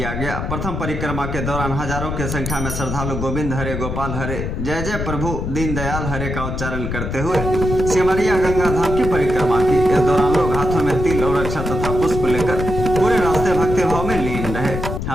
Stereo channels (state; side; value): noise; left; rumble, 4 dB below the sound